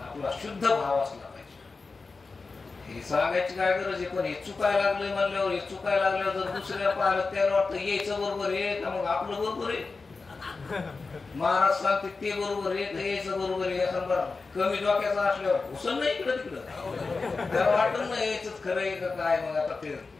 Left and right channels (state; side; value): quieter; right; 4.1 dB